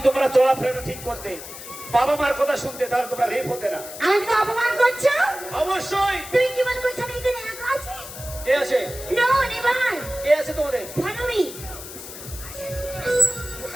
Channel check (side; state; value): left; noise; hiss, 12 dB below the sound